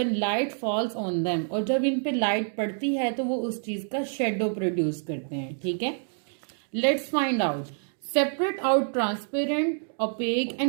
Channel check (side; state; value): left; silent; 60 dB below the other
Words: light falls on them. और जब इन पे लाइट पड़ती है तो वो उस चीज का शेडो प्रोड्यूस करते हैं। ठीक है, let's find out. Separate out transparent, opaque